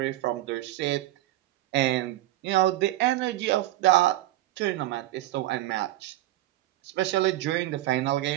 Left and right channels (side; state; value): left; quieter; 15.9 dB